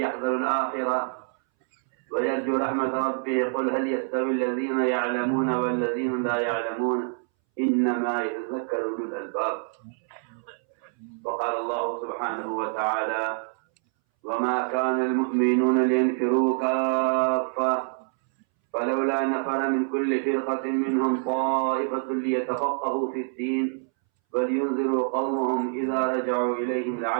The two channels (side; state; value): left; silent; 61 dB below the other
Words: الآخرة ويرجو رحمة ربه قل هل يستوي الذين يعلمون والذين لا يعلمون إنما يتذكر أولو الألباب. وقال الله سبحانه وتعالى وما كان المؤمنون لينفروا كافة فلولا نفر من كل فرقة منهم طائفة ليتفقهوا في الدين ولينذروا قومهم إذا رجعوا إليهم